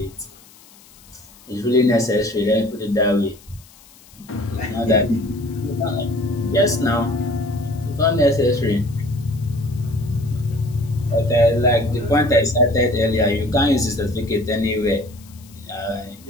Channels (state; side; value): noise; left; hiss, 25 dB below the sound